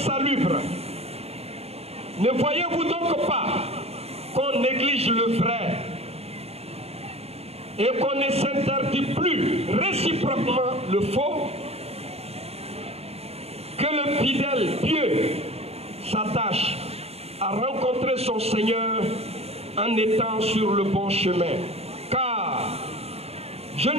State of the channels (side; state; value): left; late; 0.30 ms